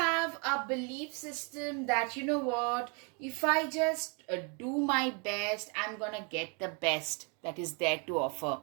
a belief system that, you know what, if I just do my best, I'm gonna get the best that is there to offer.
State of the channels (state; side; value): quieter; left; 34.6 dB